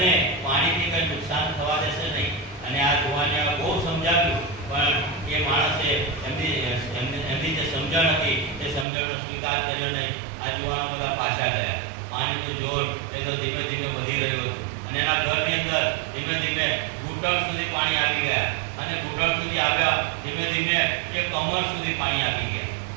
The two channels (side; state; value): left; drops out; at 8.8 s